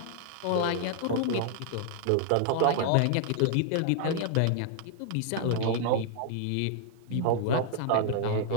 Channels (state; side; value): different; both; correlation -0.01